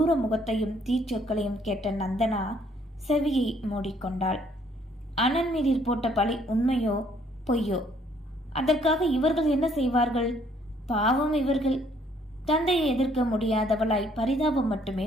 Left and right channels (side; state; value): both; normal; correlation 0.64